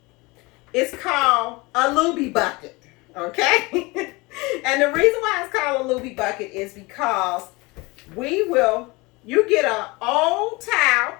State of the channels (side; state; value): right; quieter; 24.5 dB